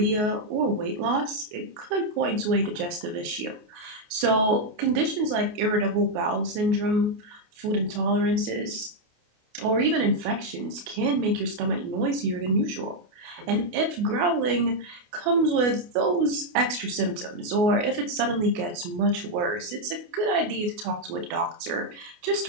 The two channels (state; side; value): late; left; 28 ms